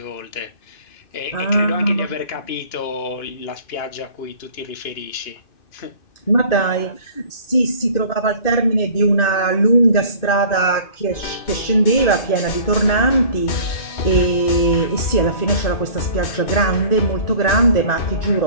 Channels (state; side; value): late; right; 2.5 ms